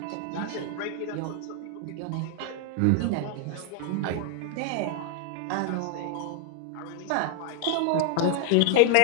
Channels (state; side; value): different; both; correlation 0.00